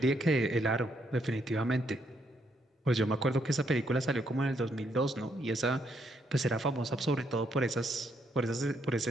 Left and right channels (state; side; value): normal; both; correlation 0.74